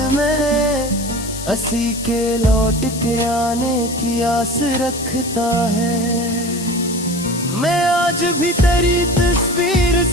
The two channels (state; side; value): noise; left; hiss, 10 dB below the sound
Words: में, हंसी के लौट के आने की आस रखता है। मैं आज भी तेरी तस्वीर